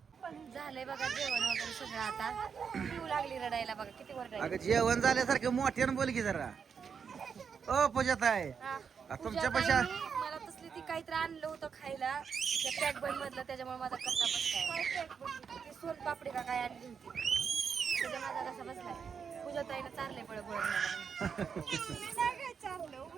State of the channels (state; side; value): quieter; left; 6.5 dB